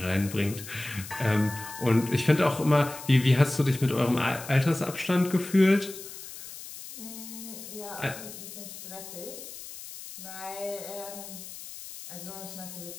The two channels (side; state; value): left; noise; hiss, 13 dB below the sound